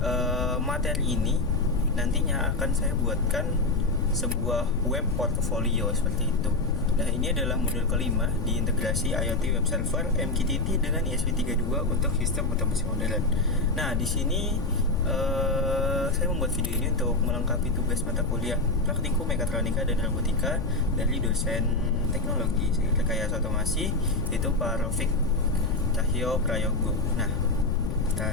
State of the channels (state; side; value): noise; left; rumble, 3 dB below the sound